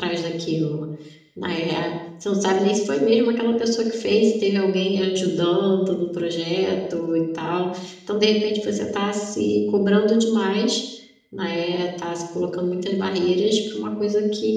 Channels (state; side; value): identical; both; correlation 1.00